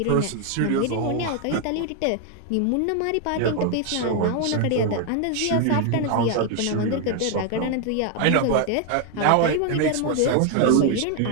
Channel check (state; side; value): different; both; correlation 0.01